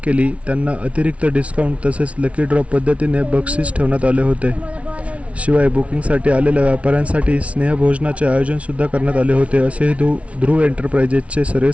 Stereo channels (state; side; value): late; left; 0.063 ms